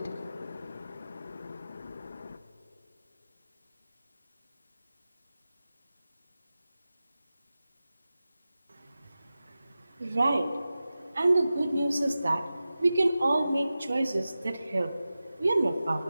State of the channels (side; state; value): both; inverted; correlation -0.95